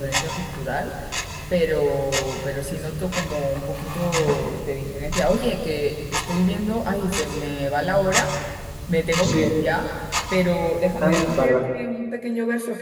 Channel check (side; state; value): both; identical; correlation 1.00